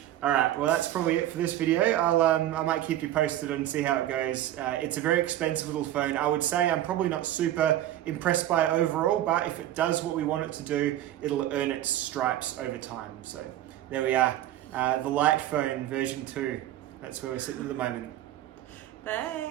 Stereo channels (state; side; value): quieter; left; 13.1 dB